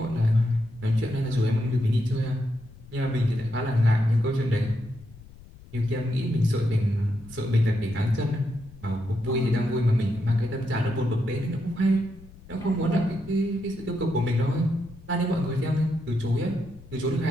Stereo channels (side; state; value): left; noise; rumble, 20 dB below the sound